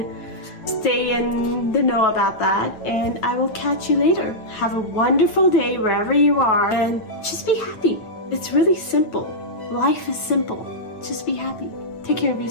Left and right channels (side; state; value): right; late; 9.1 ms